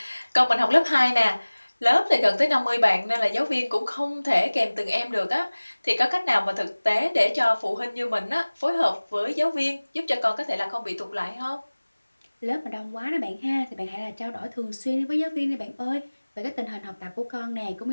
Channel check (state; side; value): inverted; both; correlation -1.00